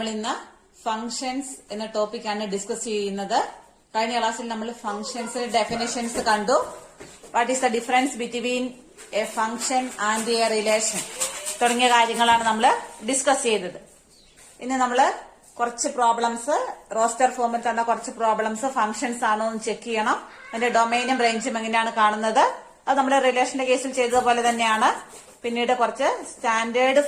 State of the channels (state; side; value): identical; both; correlation 1.00